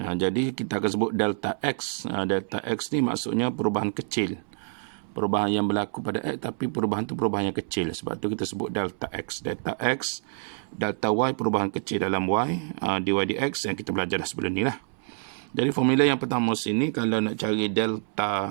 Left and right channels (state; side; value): silent; left; 60 dB below the other